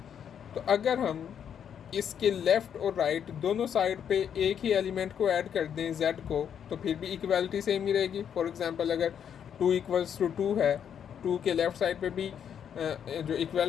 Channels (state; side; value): quieter; right; 8.4 dB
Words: तो अगर हम इसके लेफ़्ट और राइट दोनों साइड पे एक ही एलिमेंट को ऐड कर दें z को, तो फिर भी इक्वालिटी सेम ही रहेगी। फॉर एग्जांपल अगर 2 इक्वल्स टू 2 है, 2 के लेफ़्ट साइड पे भी जो